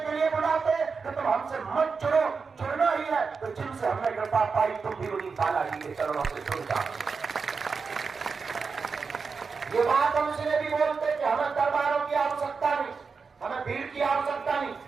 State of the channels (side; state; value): left; quieter; 5.0 dB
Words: लिए बुलाते कि तुम हमसे मत जुड़ो। जुड़ना ही है तो जिनसे हमने कृपा पाई तुम भी उन्हीं बालाजी के चरणों से जुड़ जाओ। ये बात हम इसलिए भी बोलते कि हमें दरबारों की आवश्यकता नहीं, हमें भीड़ की आवश्यकता नहीं।